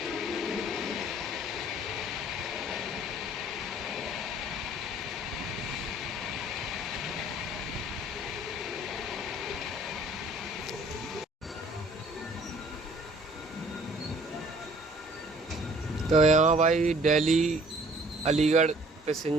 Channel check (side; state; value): both; normal; correlation 0.55